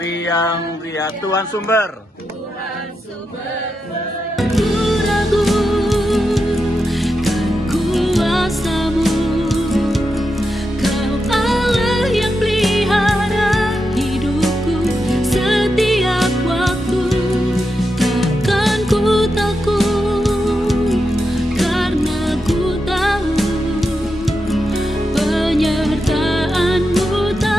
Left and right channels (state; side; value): normal; both; correlation 0.87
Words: ria Tuhan sumber. Ragu kan kuasamu, Kau Allah yang pelihara hidupku setiap waktu. Takkan ku takut karena ku tahu penyertaanmu